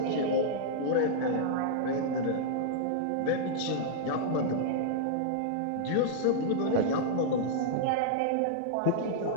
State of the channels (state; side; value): different; both; correlation -0.02